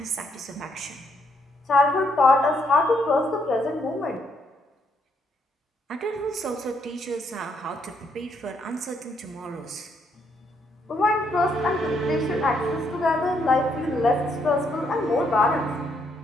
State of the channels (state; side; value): normal; both; correlation 0.73